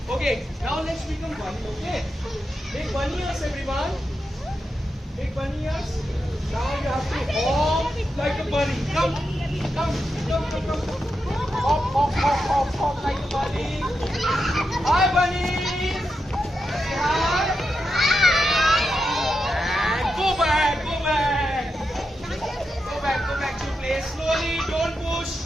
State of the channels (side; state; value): both; normal; correlation 0.87